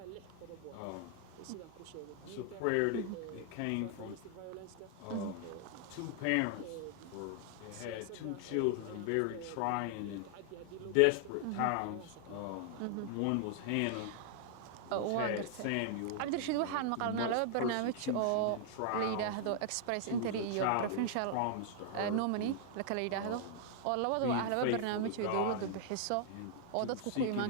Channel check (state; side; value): different; both; correlation -0.01